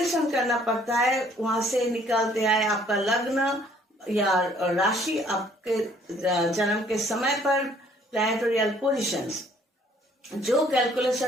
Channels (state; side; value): normal; both; correlation 0.61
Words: करना पड़ता है। वहां से निकालते आए आपका लग्न या राशि, आपके जन्म के समय पर प्लैनेटोरियल पोजीशंस, जो